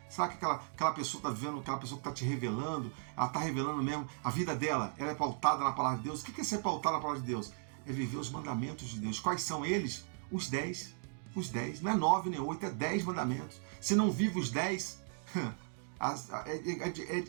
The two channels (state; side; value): silent; left; 53 dB below the other